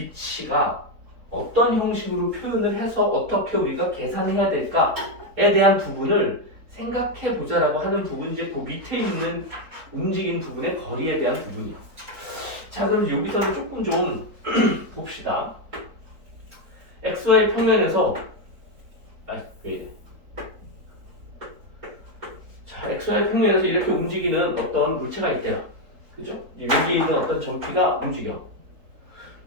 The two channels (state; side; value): late; left; 4.2 ms